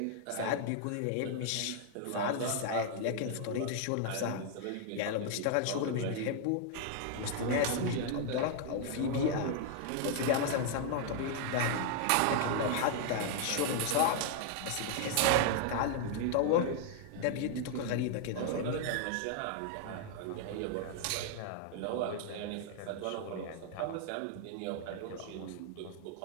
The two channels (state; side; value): different; both; correlation 0.00